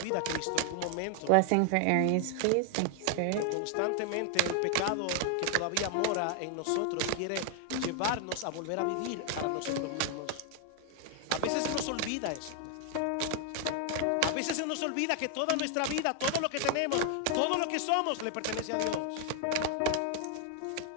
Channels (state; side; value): different; both; correlation 0.00